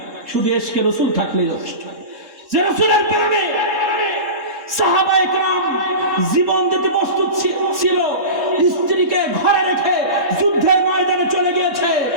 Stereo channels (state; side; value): late; left; 3.7 ms